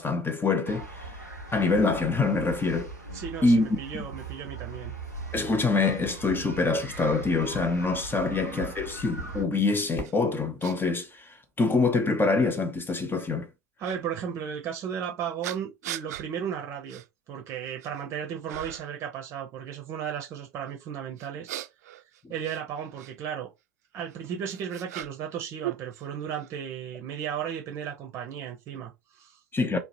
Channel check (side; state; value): both; normal; correlation 0.53